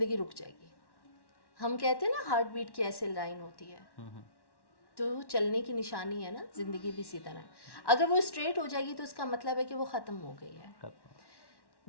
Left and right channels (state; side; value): late; right; 1.1 ms